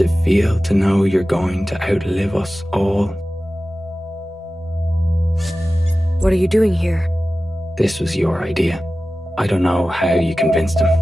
it feel to know you're going to outlive us all? What are you doing here? This was your idea. I don't know how you convinced him.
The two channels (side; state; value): both; normal; correlation 0.95